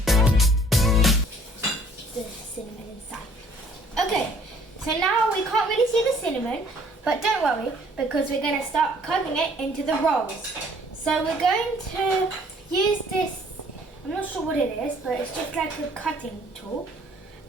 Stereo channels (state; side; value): normal; both; correlation 0.58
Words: Cinnamon inside. Okay, so now we can't really see the cinnamon, but don't worry because we're going to start cutting it into the rolls. So we're going to use this, I'm not sure what it is, but it's just like a cutting tool,